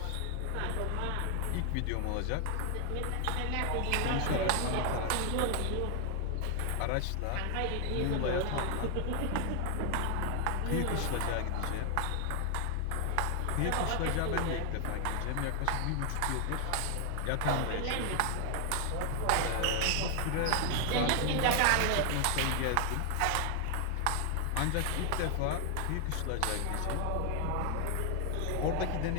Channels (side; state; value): both; different; correlation 0.00